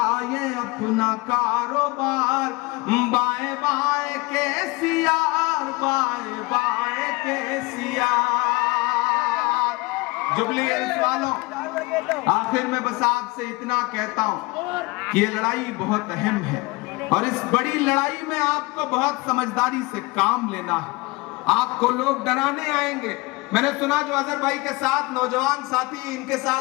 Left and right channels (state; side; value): quieter; right; 24.5 dB